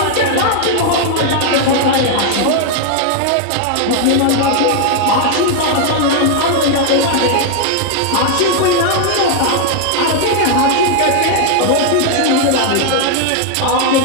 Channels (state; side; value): different; both; correlation 0.00